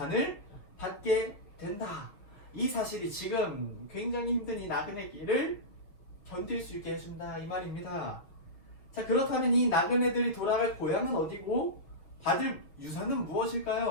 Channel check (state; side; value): late; right; 5.9 ms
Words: 받게 된다. 이 사실이 지금 굉장히 힘든 이 나그네 길을 견딜 수 있게 해준다 이 말입니다. 자, 그렇다면 이 나그네들이 돌아갈 고향은 어디고 받을 유산은